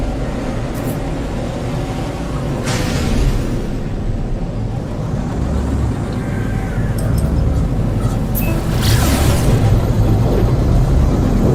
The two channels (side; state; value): both; identical; correlation 1.00